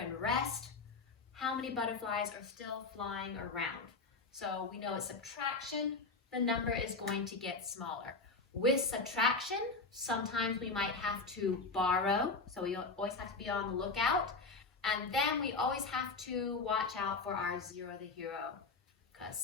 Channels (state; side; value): quieter; right; 4.0 dB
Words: rest. How many butterflies are still flying around? So we know with subtraction, the number is going to get smaller. With subtraction, sometimes we might have to borrow, so we always have to be on the lookout. And then we always have to watch out for our zero the hero, because